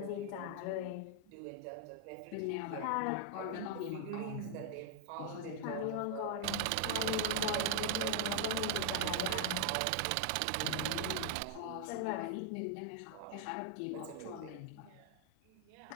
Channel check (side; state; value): both; different; correlation 0.00